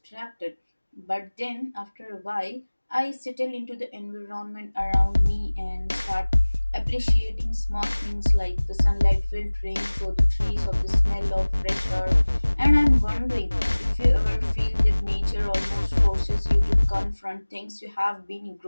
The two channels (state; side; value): inverted; both; correlation -1.00